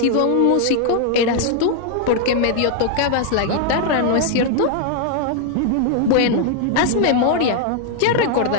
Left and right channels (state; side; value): different; both; correlation 0.00